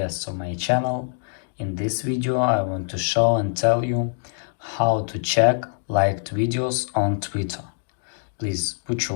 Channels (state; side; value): silent; right; digital silence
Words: of my channel. In this video I want to show and tell you how to check liked videos on Twitter. Please put